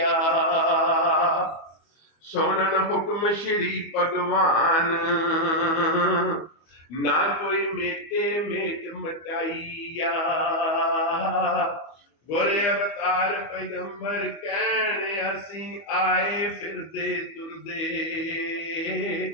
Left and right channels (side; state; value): right; late; 25 ms